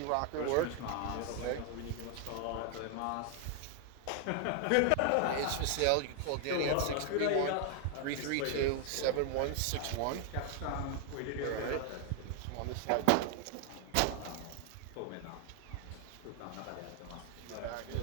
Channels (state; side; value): different; both; correlation 0.00